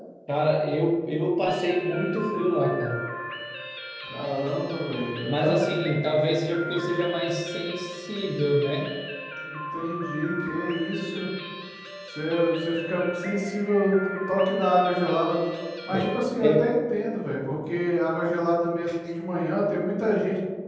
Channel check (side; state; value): both; identical; correlation 1.00